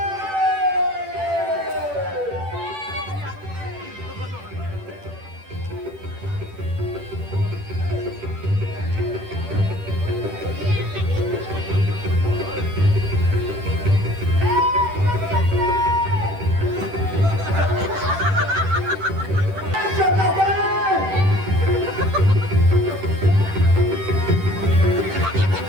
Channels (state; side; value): late; left; 10 ms